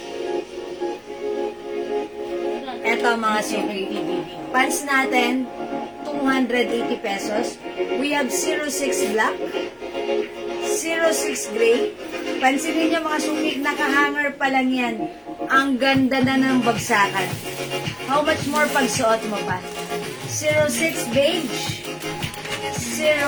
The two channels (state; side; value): identical; both; correlation 1.00